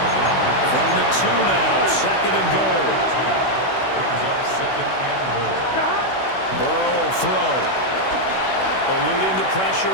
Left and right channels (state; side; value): late; right; 16 ms